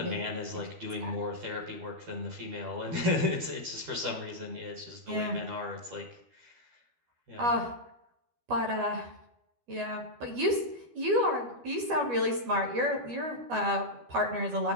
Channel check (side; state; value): left; late; 12 ms